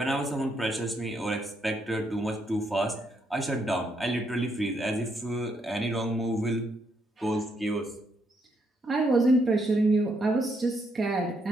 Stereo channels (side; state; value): both; normal; correlation 0.76